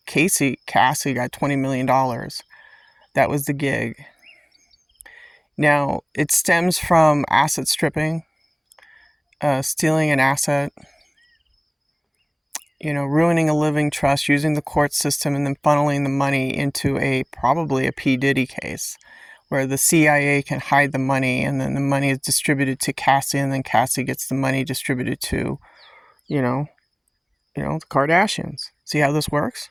Cassie got $20 million. That was the gig. Now, it stems from asset stripping, stealing an asset, ruining a living trust, using the court system, and then funneling the money into probably a P. Diddy case, where the CIA can hide the money, and then the money is distributed to Cassie, and then Cassie gets the money distributed to, the Kardashians. See how this works?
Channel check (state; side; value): identical; both; correlation 1.00